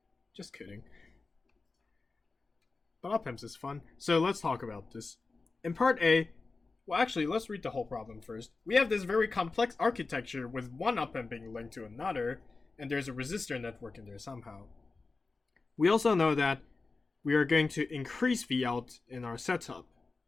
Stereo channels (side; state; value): right; quieter; 3.9 dB